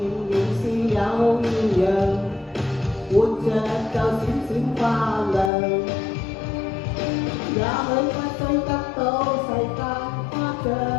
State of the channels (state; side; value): drops out; right; at 5.5 s